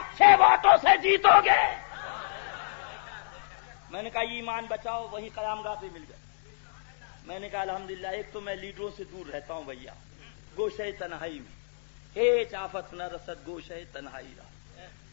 ووٹوں سے جیتو گے۔ میں نے کہا ایمان بچاؤ، وہی قیام گاہ پہ مل گئے۔ میں نے کہا الحمدللہ ایک تو میں لیڈروں سے دور رہتا ہوں بھیا، گوشے تنہائی میں ہیچ آفت نہ رسد، گوشے تنہائی رہا،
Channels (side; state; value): right; silent; digital silence